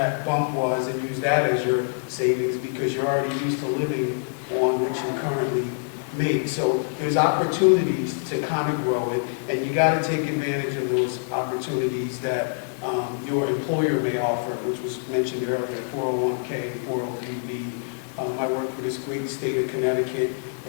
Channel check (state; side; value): silent; right; digital silence